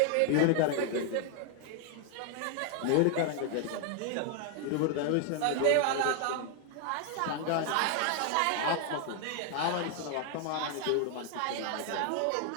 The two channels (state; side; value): different; both; correlation 0.00